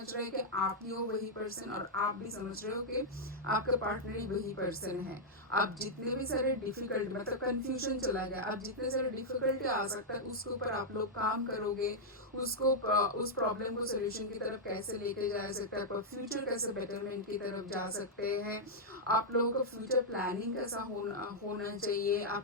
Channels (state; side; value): normal; both; correlation -0.05